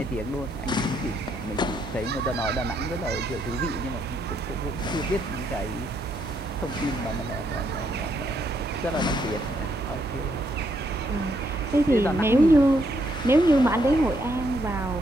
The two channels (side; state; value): both; normal; correlation 0.75